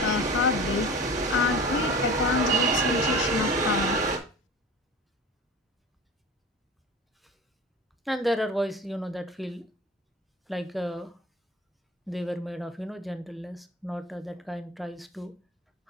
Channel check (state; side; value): normal; both; correlation 0.37